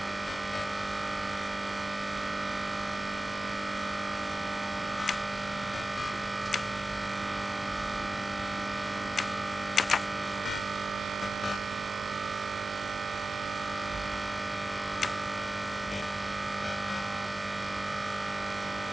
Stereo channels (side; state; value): both; normal; correlation 0.94